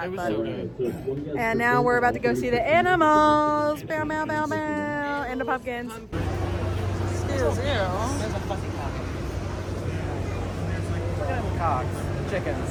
But. So good. And now we're about to go see the animals. Bow, bow, bow, bow. And the pumpkins. Excuse you. There's a fucking cock. Cocks. Chickens,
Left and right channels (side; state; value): both; identical; correlation 1.00